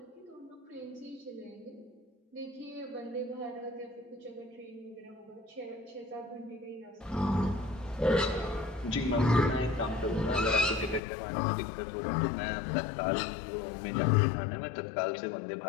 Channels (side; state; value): right; drops out; at 11.0 s